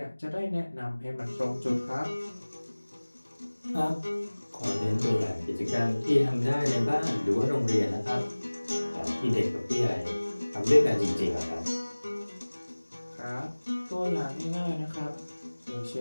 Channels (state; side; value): inverted; both; correlation -1.00